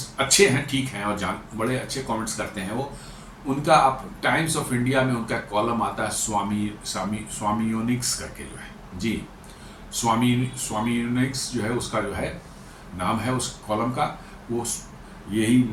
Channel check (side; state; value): both; identical; correlation 1.00